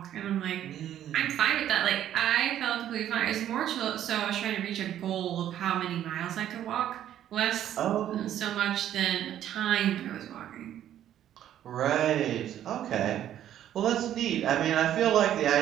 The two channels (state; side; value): quieter; left; 11.2 dB